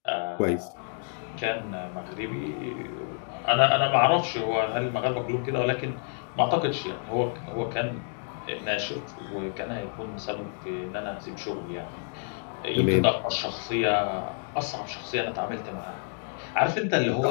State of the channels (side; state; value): right; silent; 58 dB below the other